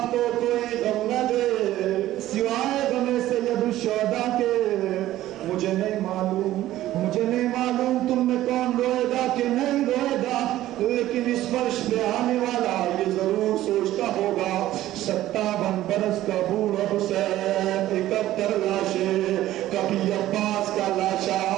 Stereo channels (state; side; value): quieter; left; 14.4 dB